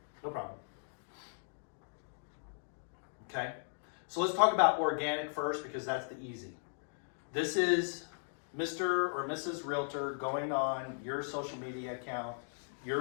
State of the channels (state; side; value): silent; right; digital silence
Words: No problem. Okay. So let's talk about organic first because that's the easy. This is Mr. or Mrs. Realtor going on your social media account,